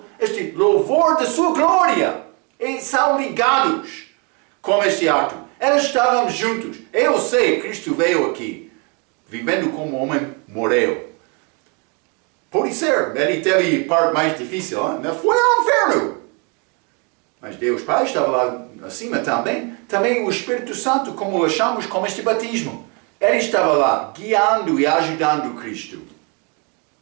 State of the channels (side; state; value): left; quieter; 33.5 dB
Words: este louvor da sua glória. E são ligados com este ato. Eles estavam juntos. Eu sei, Cristo veio aqui, vivendo como homem, morreu. Pode ser, ele teve parte mais difícil, hein? Foi ao inferno. Mas Deus Pai estava lá acima também. Também o Espírito Santo, como achamos com este batismo. Ele estava lá, guiando e ajudando Cristo.